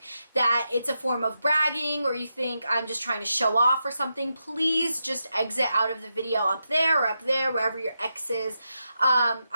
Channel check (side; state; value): both; inverted; correlation -0.86